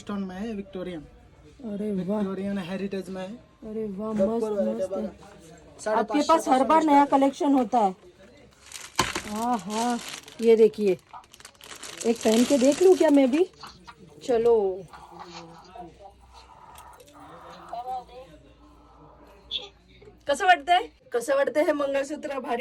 में है, विक्टोरियन. अरे वाह, विक्टोरियन हेरिटेज में है. अरे वाह, गब्बर मस्त वाले मस्त है. बघा. आपके पास हर बार नया कलेक्शन होता है. हाँ हाँ, ये देखिए, एक पहन के देख लूं क्या मैं भी? चलो. कसं वाटतंय? कसं वाटतंय हे मंगळसूत्र?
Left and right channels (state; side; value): identical; both; correlation 1.00